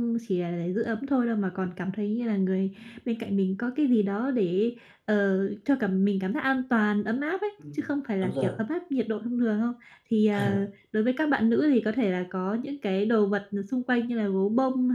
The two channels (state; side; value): identical; both; correlation 1.00